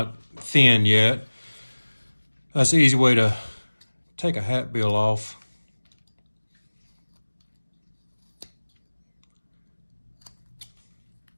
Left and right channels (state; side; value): inverted; both; correlation -1.00